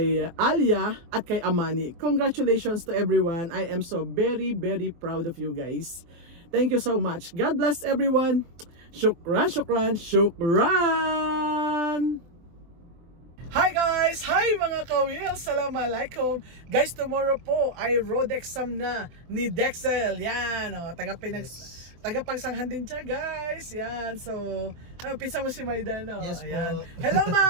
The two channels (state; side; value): late; left; 24 ms